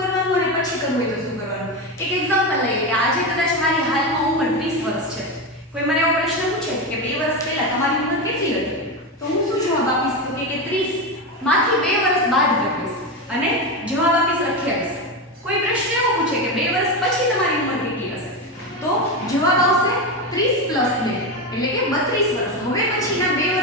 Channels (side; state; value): both; normal; correlation 0.15